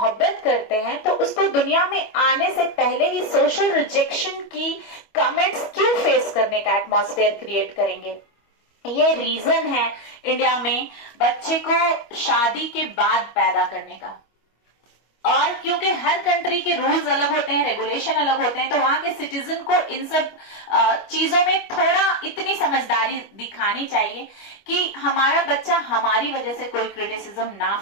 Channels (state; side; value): late; right; 25 ms